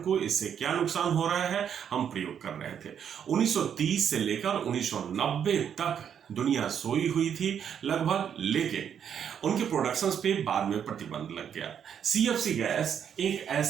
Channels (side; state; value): left; quieter; 8.4 dB